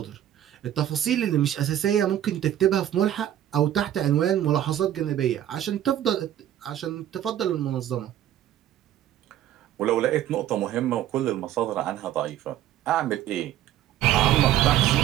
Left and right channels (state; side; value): quieter; left; 11.8 dB